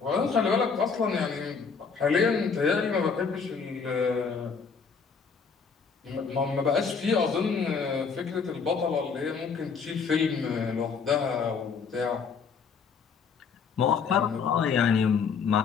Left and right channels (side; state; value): right; quieter; 5.7 dB